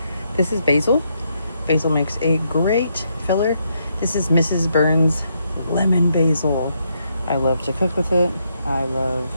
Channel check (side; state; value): both; inverted; correlation -0.77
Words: This is basil. Basil makes a great filler. This is Mrs. Burns lemon basil. I love to cook with it. I love